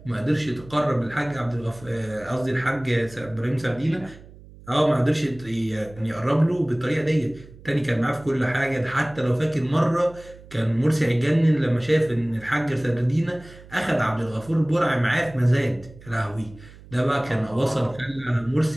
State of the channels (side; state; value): right; noise; hum, 20 dB below the sound